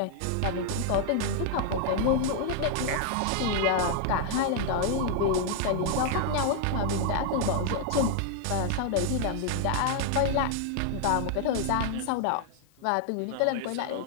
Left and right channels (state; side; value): different; both; correlation 0.00